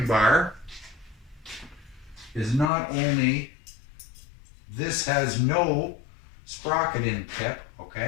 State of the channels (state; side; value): drops out; right; at 2.7 s